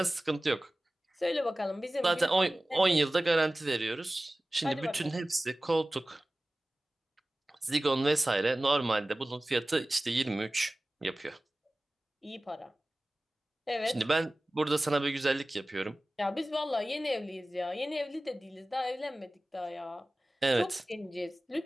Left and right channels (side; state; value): both; normal; correlation 0.97